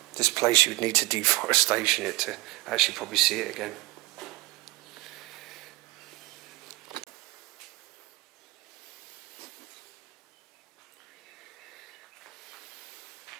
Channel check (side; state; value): left; quieter; 22.2 dB